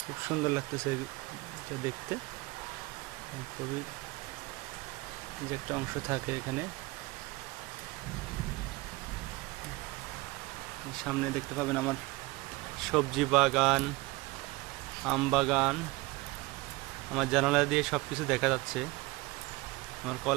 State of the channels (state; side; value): quieter; left; 22.3 dB